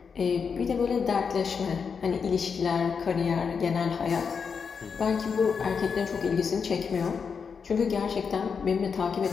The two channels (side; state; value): right; quieter; 5.9 dB